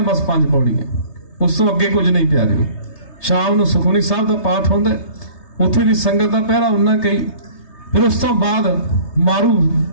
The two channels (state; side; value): late; right; 3.3 ms